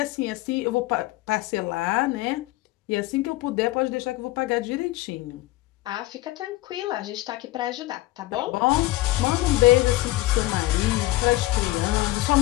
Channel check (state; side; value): quieter; right; 18.4 dB